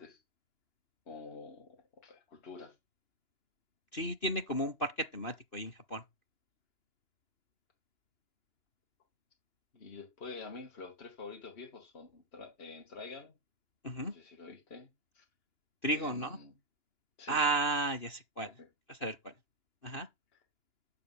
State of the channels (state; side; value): late; right; 2.9 ms